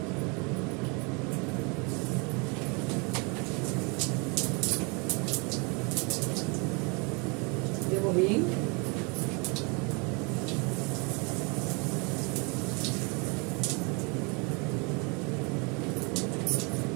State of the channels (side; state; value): left; quieter; 31.5 dB